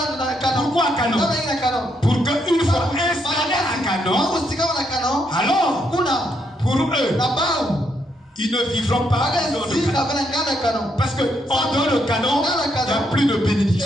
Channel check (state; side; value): normal; both; correlation 0.76